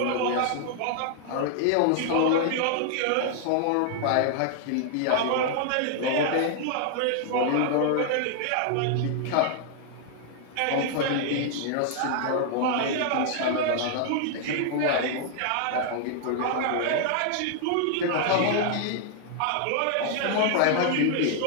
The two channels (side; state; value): both; different; correlation 0.00